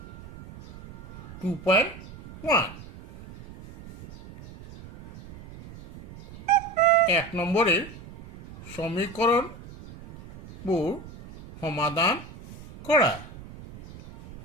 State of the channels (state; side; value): noise; right; rumble, 17 dB below the sound